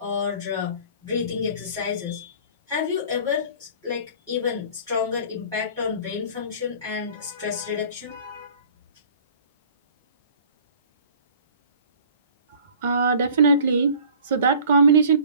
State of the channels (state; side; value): inverted; both; correlation -0.48